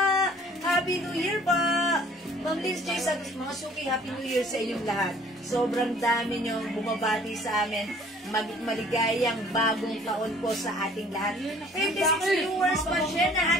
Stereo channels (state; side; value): normal; both; correlation 0.54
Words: Happy New Year pa. Ma'am Liz J. Santos, mga suki, Happy New Year sa inyong lahat. Sobrang dami nyo bumabati sa amin. Maligayang bagong taon po sa ating lahat. 26 viewers, pa-share na